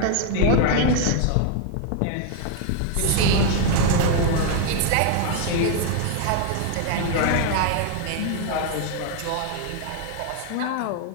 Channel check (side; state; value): both; different; correlation 0.00